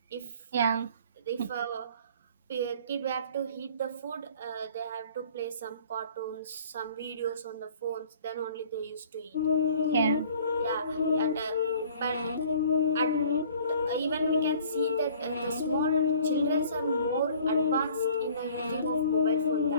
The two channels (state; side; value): inverted; both; correlation -0.52